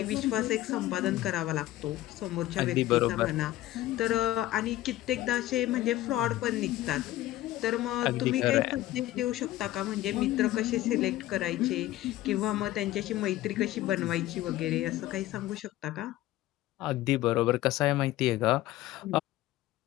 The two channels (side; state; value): right; quieter; 15.3 dB